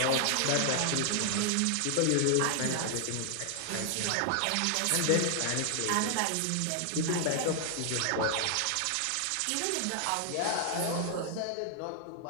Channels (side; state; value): both; different; correlation 0.00